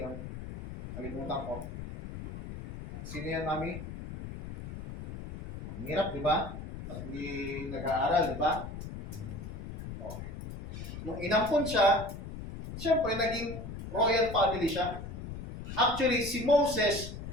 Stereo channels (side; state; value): left; noise; rumble, 9 dB below the sound